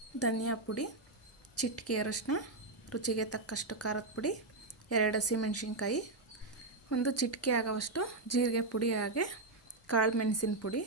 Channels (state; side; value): quieter; left; 3.1 dB